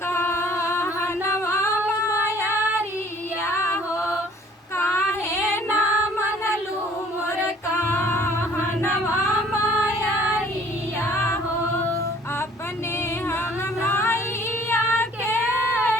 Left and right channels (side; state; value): both; normal; correlation 0.55